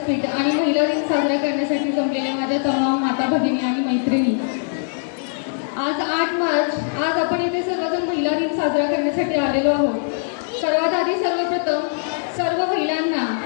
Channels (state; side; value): silent; right; digital silence